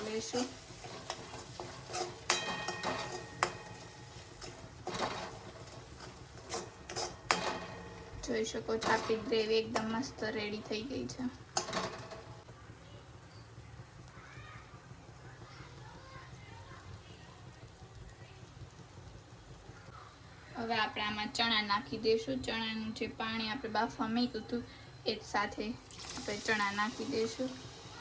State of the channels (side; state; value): both; identical; correlation 1.00